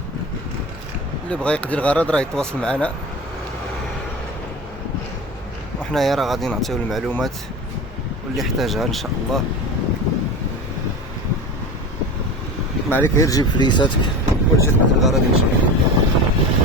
اللي بغى يقضي الغرض راه يتواصل معنا، وحنايا راه غادي نعطيو المعلومات واللي يحتاجها ان شاء الله. ما عليك غير تجيب فليساتك وتجي تقضي الغرض ان شاء الله.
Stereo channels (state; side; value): normal; both; correlation 0.29